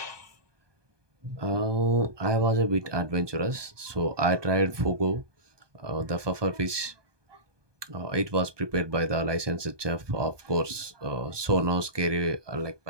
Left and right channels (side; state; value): left; late; 1.2 ms